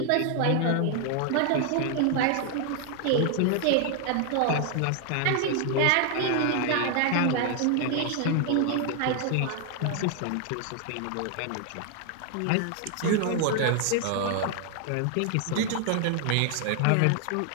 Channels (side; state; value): both; different; correlation 0.00